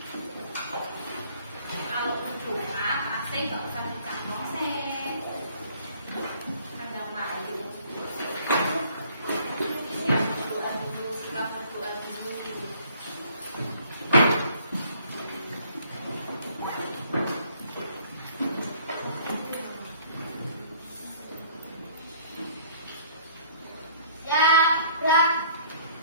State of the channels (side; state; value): both; inverted; correlation -0.57